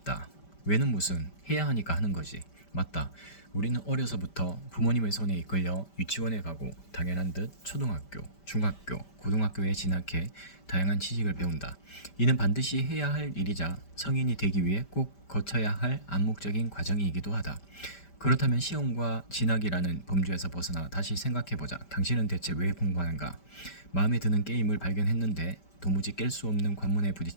왜는 무슨, 해야 하니까 하는 거지. 맞다. 우리는 어려서부터 부모님의 손에 이끌려 유치원에 가고 당연한 듯 초등학교, 중학교, 고등학교에 진학해 다양한 지식을 배운다. 이는 반드시 해야 할 일이자 성인이 되기 위해 꼭 거쳐야 할 암묵적인 과정이기도 하다. 그렇다면 시험과 진학이라는 범주에서 벗어나 다시 생각해보자. 당신은 대체 왜 공부하는가? 마음에 드는 게임을 발견했는데 도무지 깰 수 없는 관문에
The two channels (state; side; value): late; right; 5.1 ms